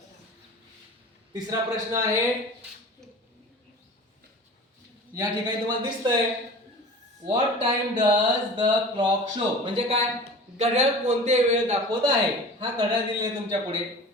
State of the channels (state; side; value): normal; both; correlation 0.38